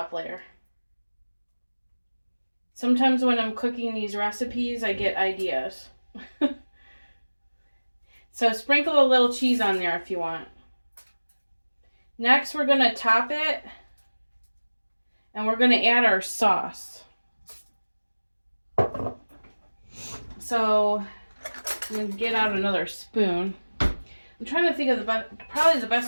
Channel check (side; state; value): both; inverted; correlation -1.00